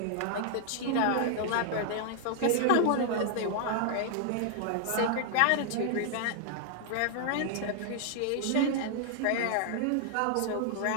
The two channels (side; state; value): both; different; correlation 0.00